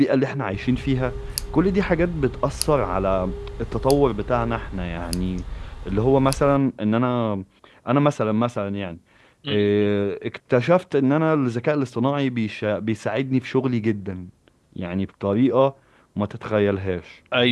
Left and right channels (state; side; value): identical; both; correlation 1.00